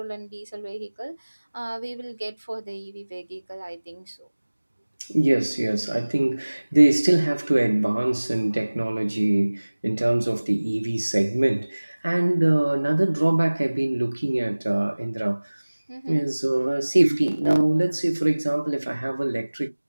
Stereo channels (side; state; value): both; inverted; correlation -1.00